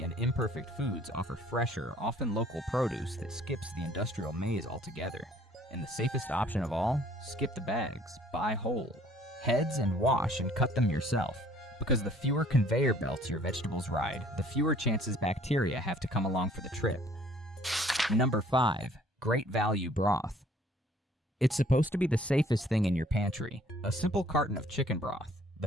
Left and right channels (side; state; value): both; normal; correlation 0.57